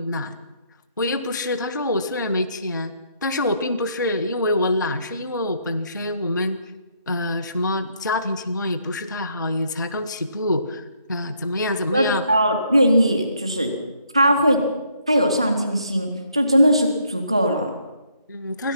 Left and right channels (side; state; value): both; inverted; correlation -0.70